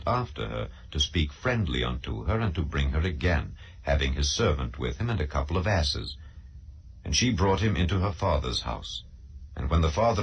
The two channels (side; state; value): both; identical; correlation 1.00